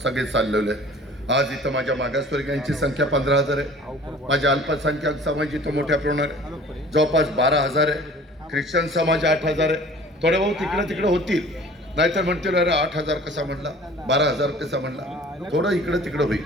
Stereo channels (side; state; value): both; normal; correlation 0.47